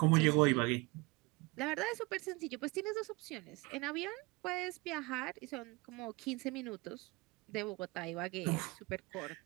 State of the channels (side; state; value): left; quieter; 24.9 dB